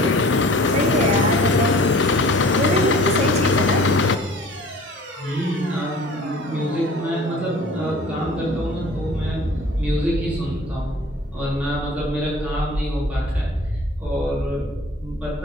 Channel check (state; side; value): normal; both; correlation 0.46